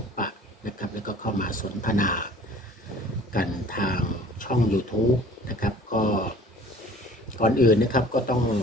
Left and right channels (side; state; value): both; normal; correlation 0.48